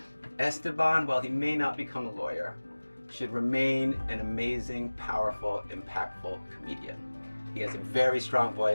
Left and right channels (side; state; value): both; inverted; correlation -1.00